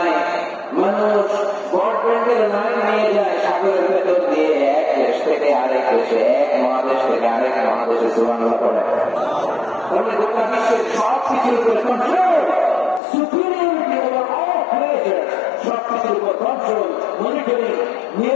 মানুষ ব্রডব্যান্ডের লাইন নিয়ে যায় সাগরের ভেতর দিয়ে, এক দেশ থেকে আরেক দেশে, এক মহাদেশ থেকে আরেক মহাদেশে। সুবহানাল্লাহ পড়ে। তাহলে গোটা বিশ্বের সব কিছুর উপরে control, superiority over all creature, সব কিছুর উপর কন্ট্রোল, মনিটরিং,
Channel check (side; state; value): right; drops out; at 13.0 s